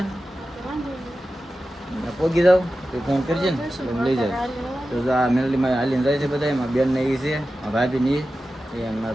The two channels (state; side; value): normal; both; correlation 0.93